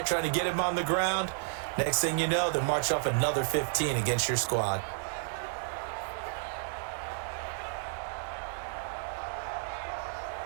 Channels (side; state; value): left; silent; 57 dB below the other